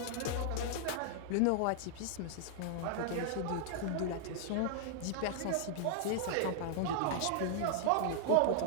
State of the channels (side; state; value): both; different; correlation -0.01